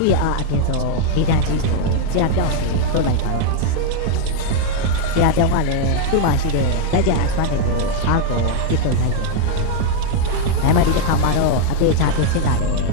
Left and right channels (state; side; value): different; both; correlation 0.00